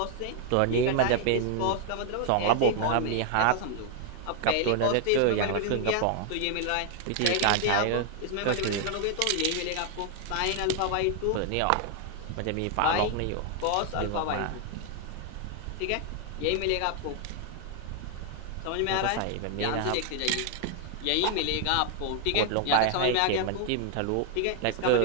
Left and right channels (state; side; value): different; both; correlation 0.00